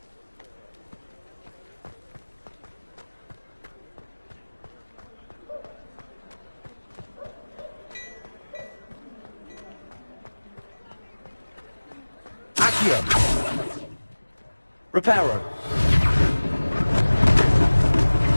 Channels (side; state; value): both; inverted; correlation -1.00